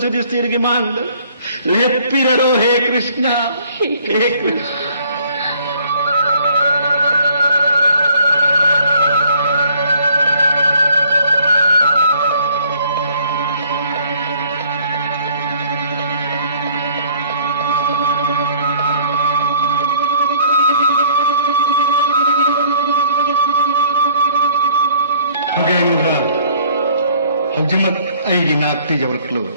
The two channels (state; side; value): inverted; both; correlation -0.59